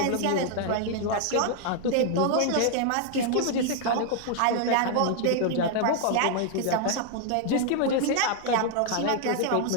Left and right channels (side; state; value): both; different; correlation 0.00